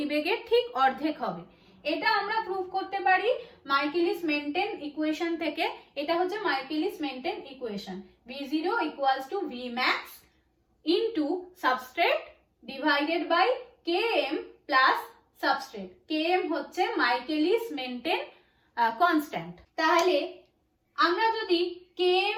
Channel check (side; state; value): both; identical; correlation 1.00